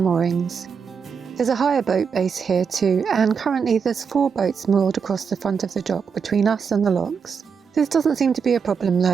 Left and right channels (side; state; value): left; quieter; 6.1 dB